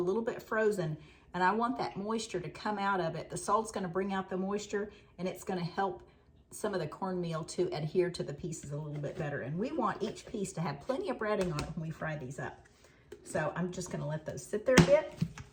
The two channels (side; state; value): both; identical; correlation 1.00